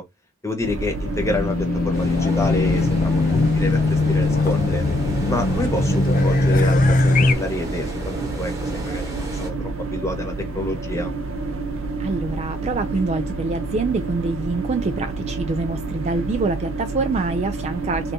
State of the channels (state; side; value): normal; both; correlation 0.69